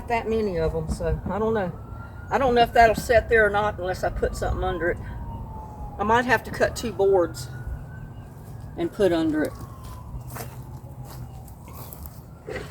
that many of them, so I don't know. I don't know if that'll set there or not unless I put something under it. I might have to cut 2 boards and put under it.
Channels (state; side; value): identical; both; correlation 1.00